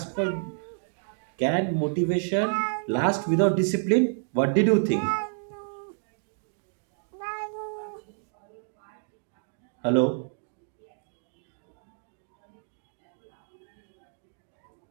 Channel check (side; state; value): left; silent; digital silence